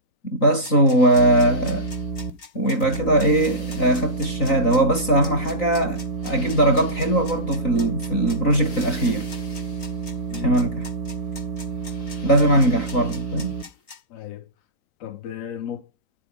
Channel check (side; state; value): right; late; 3.9 ms